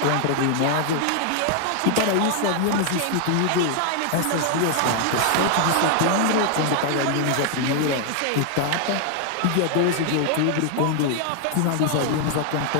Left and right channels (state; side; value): different; both; correlation 0.00